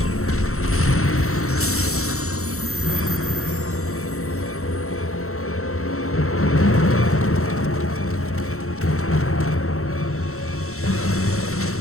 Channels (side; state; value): right; late; 0.63 ms